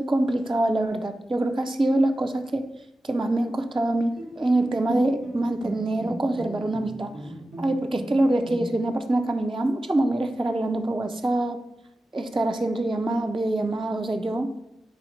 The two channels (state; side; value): normal; both; correlation 0.93